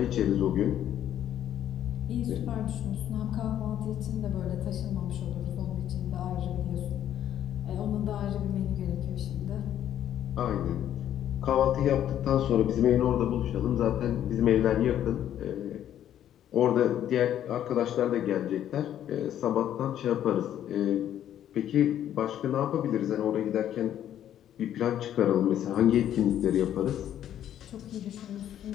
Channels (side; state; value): right; quieter; 10.9 dB